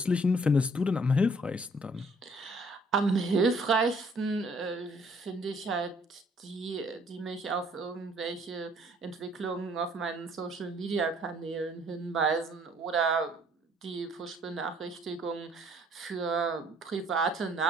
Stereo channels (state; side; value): normal; both; correlation 0.60